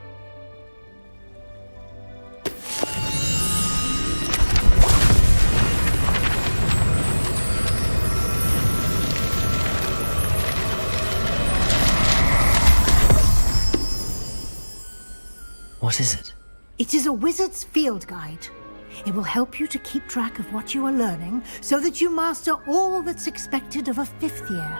What is it? It is a wizard's field guide. It will help you to keep track of what you are learning so that you master all that's expected of a fifth year.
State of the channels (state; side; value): inverted; both; correlation -1.00